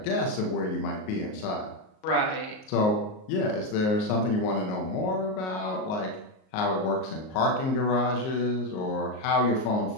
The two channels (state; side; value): late; right; 38 ms